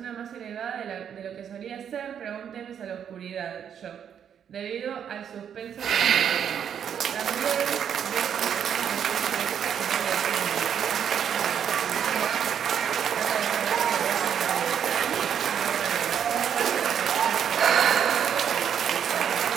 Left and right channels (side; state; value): left; quieter; 8.5 dB